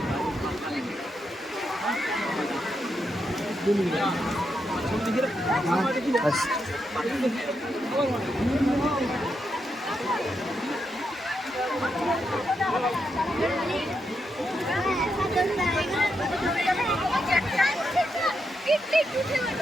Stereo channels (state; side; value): normal; both; correlation 0.83